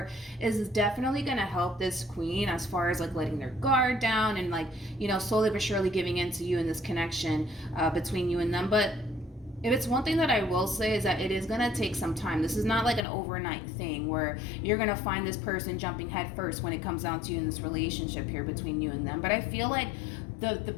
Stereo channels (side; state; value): right; drops out; at 13.1 s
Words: is definitely going to help this Queen as far as like letting their guard down and like, you know, slowly but surely giving in to you in this connection between you and them. But if it's one thing that I will say is that it is going to take some time. This is not like an overnight thing where you're going to find this person jumping head first when it comes down to you in this relationship here between you and them. But I feel like the